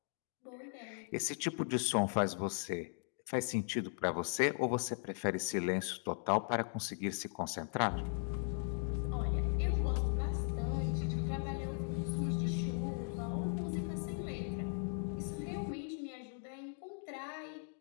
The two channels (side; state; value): right; silent; 52 dB below the other